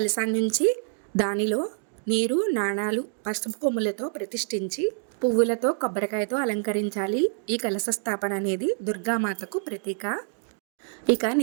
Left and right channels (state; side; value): silent; left; 61 dB below the other